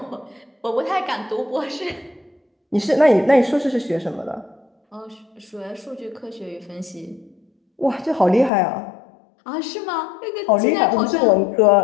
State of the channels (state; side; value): drops out; right; at 8.5 s